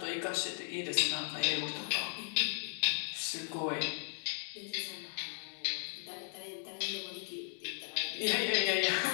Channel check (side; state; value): right; silent; 54 dB below the other